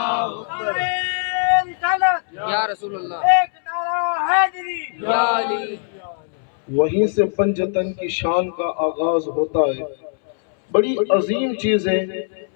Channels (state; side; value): silent; right; 64 dB below the other